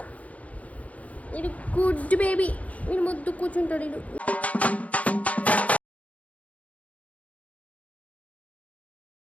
వీడు గుడ్ బేబీ. వీడు ముద్దు కూర్చుంటాడు. వీడు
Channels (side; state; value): right; late; 0.068 ms